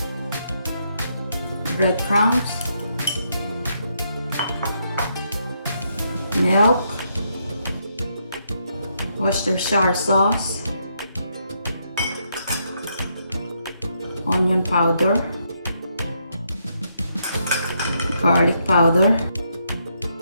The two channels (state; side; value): inverted; both; correlation -0.77